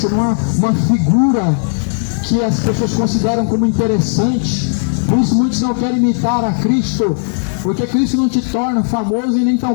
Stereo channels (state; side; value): silent; right; digital silence